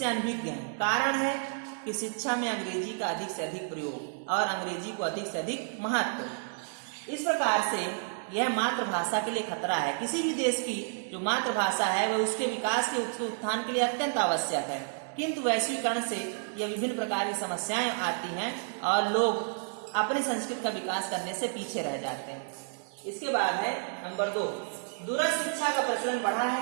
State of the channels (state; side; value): silent; left; 57 dB below the other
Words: अनभिज्ञ हैं। कारण है कि शिक्षा में अंग्रेजी का अधिक से अधिक प्रयोग और अंग्रेजी को अधिक से अधिक महत्व। इस प्रकार से यह मातृभाषा के लिए खतरा है। किसी भी देश की जो मातृभाषा है वह उसके विकास के उत्थान के लिए अत्यंत आवश्यक है, किंतु वैश्वीकरण से यह विभिन्न प्रकार की समस्याएं आती हैं और लोग अपनी संस्कृति का विकास करने से पीछे रह जाते हैं। इसके बाद है नंबर 2, दूरस्थ शिक्षा का प्रचलन बढ़ा